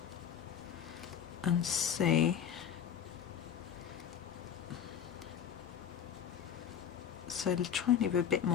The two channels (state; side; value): quieter; right; 8.7 dB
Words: and see. So try and leave a bit